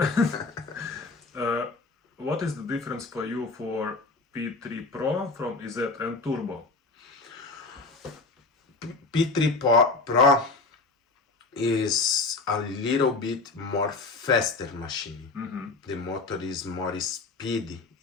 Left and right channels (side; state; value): right; quieter; 3.7 dB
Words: What is the difference for you for P3 Pro from EZ and Turbo? P3 Pro is a little bit more faster machine. The motor is more speedy,